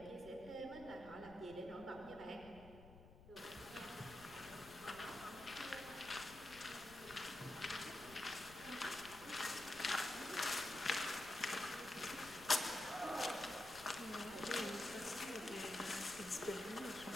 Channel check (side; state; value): left; noise; rumble, 18 dB below the sound